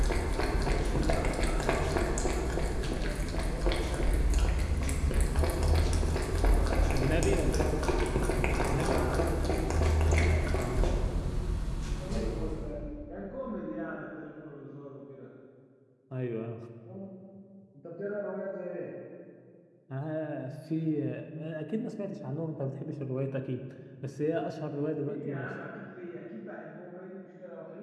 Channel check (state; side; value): identical; both; correlation 1.00